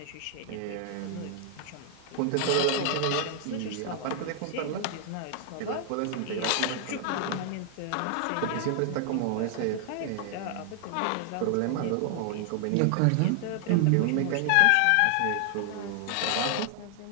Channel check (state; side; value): different; both; correlation 0.00